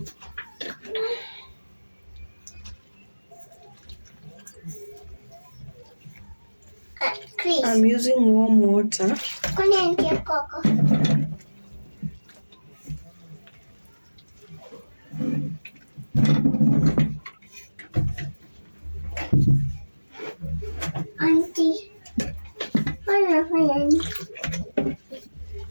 I'm using warm water. Auntie.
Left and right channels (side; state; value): both; inverted; correlation -1.00